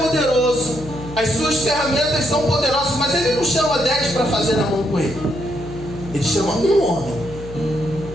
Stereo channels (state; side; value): noise; left; hum, 13 dB below the sound